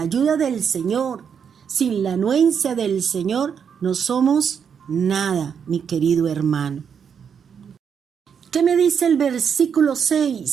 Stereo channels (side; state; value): left; quieter; 7.2 dB